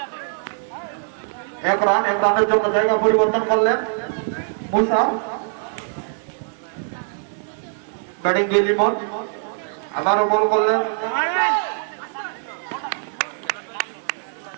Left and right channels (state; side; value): silent; left; 61 dB below the other